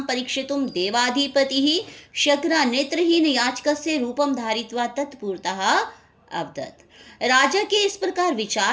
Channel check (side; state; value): both; identical; correlation 1.00